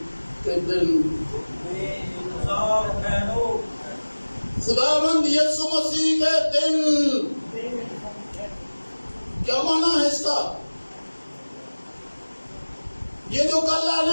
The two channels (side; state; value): both; inverted; correlation -1.00